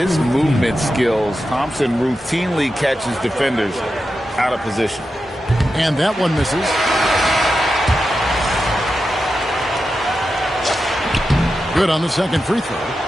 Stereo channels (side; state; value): both; normal; correlation 0.90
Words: movement skills, Thompson routinely catches defenders out of position. And that one misses. Good on the second free throw.